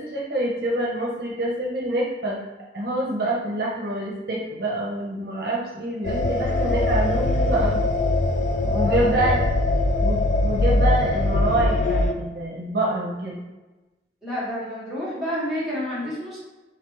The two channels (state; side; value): normal; both; correlation 0.51